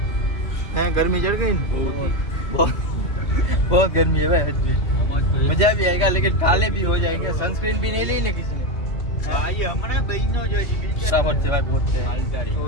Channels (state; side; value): late; right; 2.8 ms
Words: गर्मी चढ़ गई, बहुत गर्मी है भाई। मजा भी आएगा, लेकिन काले भी हो जाएंगे। सनस्क्रीन भी नहीं ली ना किसी ने। फटाफट से भाई बहुत से